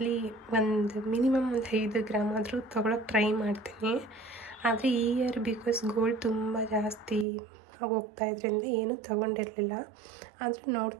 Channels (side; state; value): left; drops out; at 7.2 s